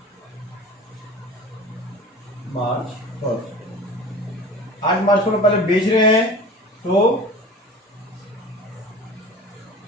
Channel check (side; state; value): both; normal; correlation 0.39